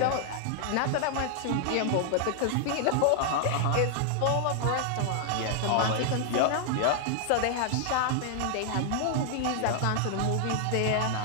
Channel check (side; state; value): both; different; correlation -0.01